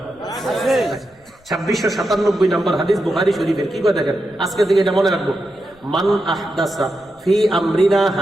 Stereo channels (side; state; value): left; noise; rumble, 30 dB below the sound